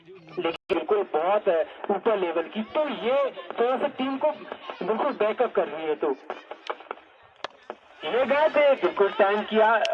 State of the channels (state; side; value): identical; both; correlation 1.00